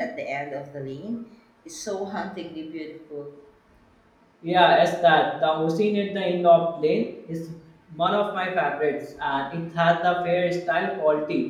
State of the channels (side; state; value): both; identical; correlation 1.00